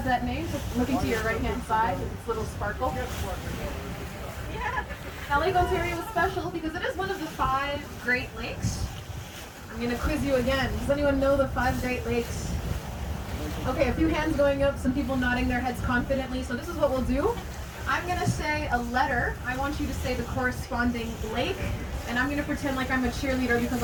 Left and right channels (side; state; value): both; identical; correlation 1.00